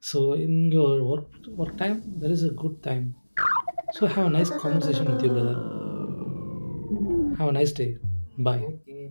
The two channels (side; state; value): both; inverted; correlation -1.00